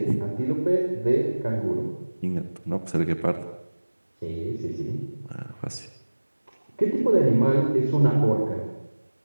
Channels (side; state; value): both; inverted; correlation -1.00